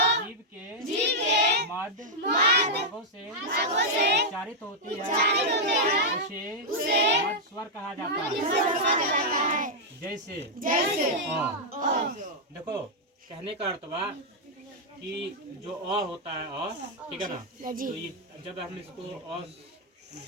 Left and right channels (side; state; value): both; normal; correlation -0.04